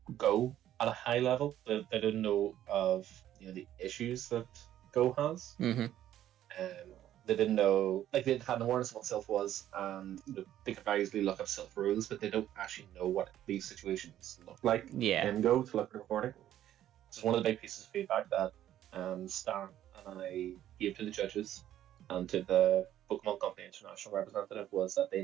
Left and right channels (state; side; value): quieter; left; 12.0 dB